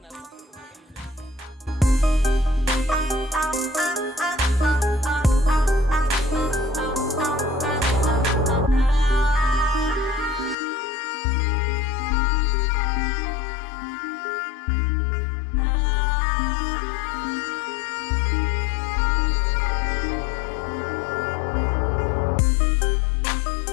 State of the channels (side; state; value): right; drops out; at 10.6 s